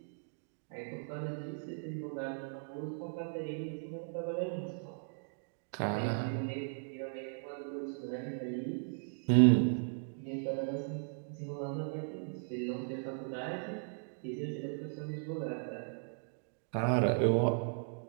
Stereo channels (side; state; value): left; silent; digital silence